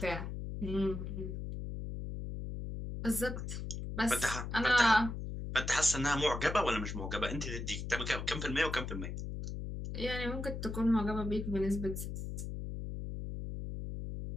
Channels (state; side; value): noise; left; hum, 6 dB below the sound